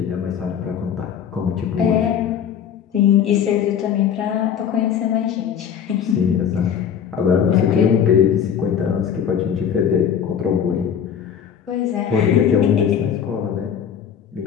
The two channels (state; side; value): quieter; right; 8.2 dB